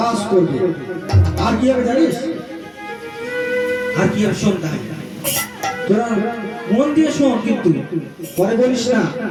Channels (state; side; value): identical; both; correlation 1.00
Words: করবে আর কি হবে জানিস আর কি হবে সন্ধ্যা তোরা মন দিয়ে শোন, কিন্তু পরে বলিস না